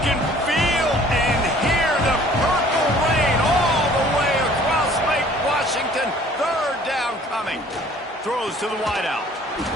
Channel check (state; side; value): normal; both; correlation 0.54